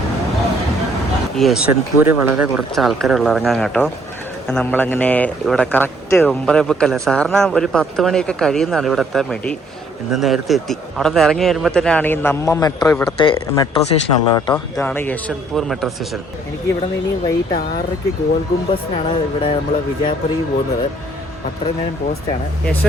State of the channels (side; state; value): both; normal; correlation 0.63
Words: ഈ യശ്വന്ത്പൂർ വളരെ കുറച്ച് ആൾക്കാരുള്ള ഇറങ്ങാൻ കേട്ടോ. നമ്മളങ്ങനെ ഇവിടെ കറക്റ്റ് 9:45 സാറിന് ഒരു 10 മണിയൊക്കെ കഴിയുന്നതാണ് ഇവിടെ എത്താൻ വേണ്ടി. ഇന്ന് നേരത്തെ എത്തി. അവിടെ നിന്ന് ഇറങ്ങി വരുമ്പോൾ തന്നെയാണ് ഈ നമ്മ മെട്രോ, ഇവിടുത്തെ മെട്രോ സ്റ്റേഷനുള്ളത് കേട്ടോ. ഇതാണ് യശ്വന്ത്പൂർ മെട്രോ സ്റ്റേഷൻ. എനിക്ക് ഇവിടെ നിന്ന് ഇനി വൈകിട്ട് 6:00 ഗോൾ ഗുംബസിനാണ് ഇവിടെ നമ്മൾ വിജയപുരയ്ക്ക് പോകുന്നത്. അത്രയും നേരം പോസ്റ്റാണ്.